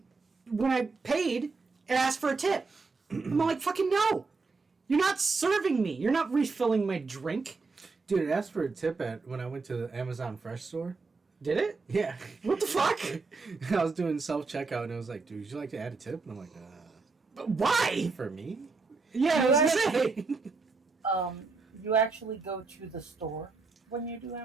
when I paid, it asked for a tip. I'm like, fucking no, you're not serving me. You're not refilling my drink. Dude, it asked for a tip when I went to the Amazon Fresh store. Did it? Yeah. What the fuck? I was doing self-checkout, and I was like, dude, would you like to add a tip? And I'm like, why? for me? Yeah, I was gonna say. You actually go to the store when you do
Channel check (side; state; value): left; quieter; 4.2 dB